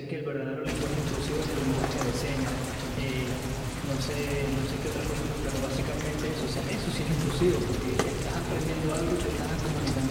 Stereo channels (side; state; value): both; identical; correlation 1.00